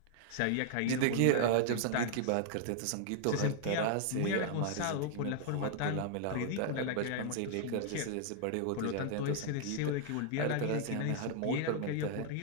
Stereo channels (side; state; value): both; different; correlation -0.01